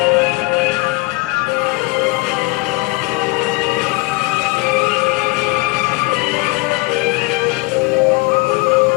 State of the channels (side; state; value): right; quieter; 23.7 dB